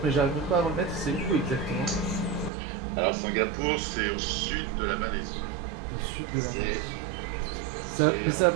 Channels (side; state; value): left; drops out; at 2.5 s